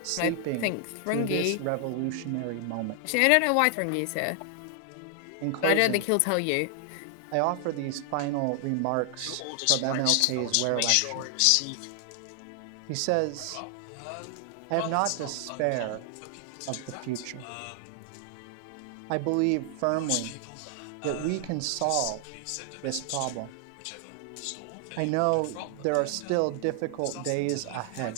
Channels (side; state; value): both; different; correlation 0.00